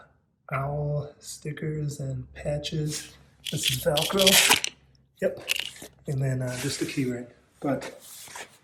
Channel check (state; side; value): identical; both; correlation 1.00